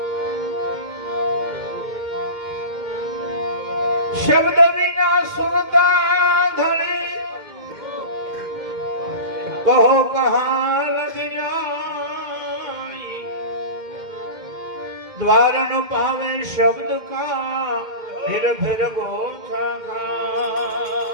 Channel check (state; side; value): late; left; 2.1 ms